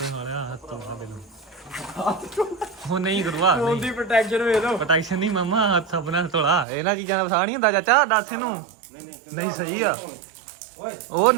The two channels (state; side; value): drops out; left; at 6.7 s